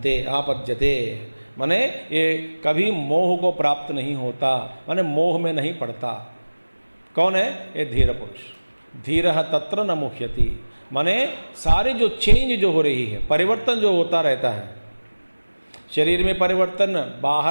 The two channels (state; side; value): inverted; both; correlation -1.00